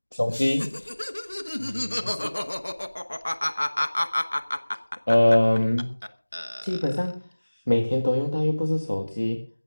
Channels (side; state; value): both; inverted; correlation -1.00